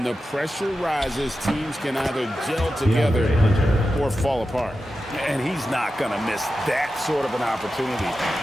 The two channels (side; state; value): both; normal; correlation 0.92